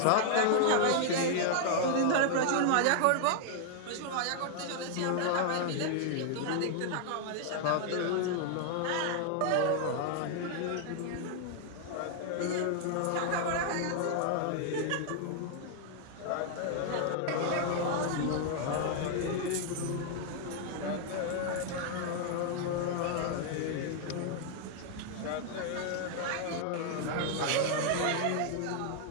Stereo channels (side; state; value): both; different; correlation 0.00